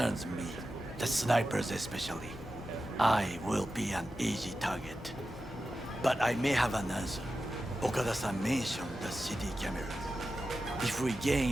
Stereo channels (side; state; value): both; normal; correlation 0.92